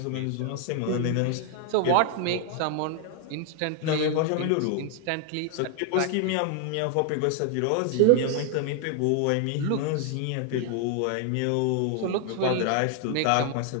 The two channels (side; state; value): both; different; correlation 0.00